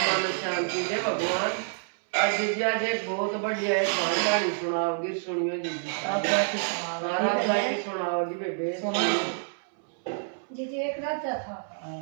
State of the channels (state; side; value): silent; left; 58 dB below the other